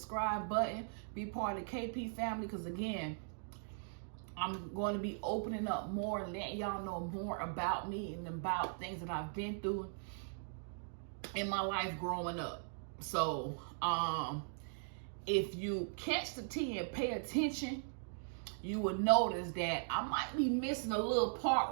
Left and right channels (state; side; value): silent; left; digital silence